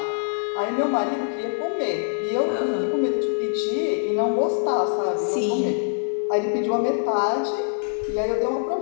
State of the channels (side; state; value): right; silent; digital silence